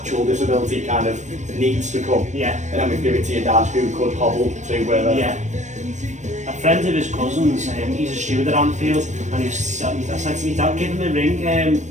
disability kind of needs to come. Yeah. And then we give it to your dad who could hobble to where they're... Yeah. A friend of his cousin's, he's a steward at Anfield, and I said to me, Dad, give him a ring.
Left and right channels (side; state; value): left; late; 0.34 ms